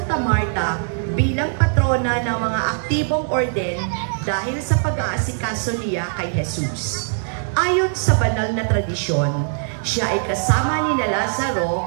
Marta bilang patrona ng mga aktibong orden dahil sa pag-aasikaso niya kay Jesus. Ayon sa banal na tradisyon, siya ay kasama ni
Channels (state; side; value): silent; left; digital silence